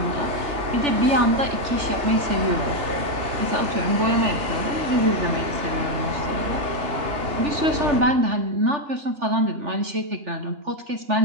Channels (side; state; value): left; late; 3.4 ms